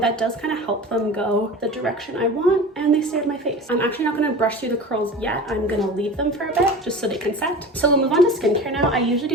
that does kind of help them go the direction I want, and they stay on my face. I'm actually not going to brush through the curls yet. I'm going to leave them for a bit just so they can set. So we'll move on to skincare now. I usually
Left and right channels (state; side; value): normal; both; correlation 0.35